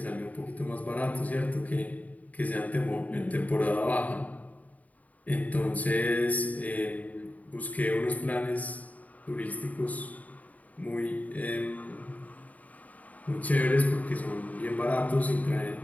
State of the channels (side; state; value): right; late; 0.073 ms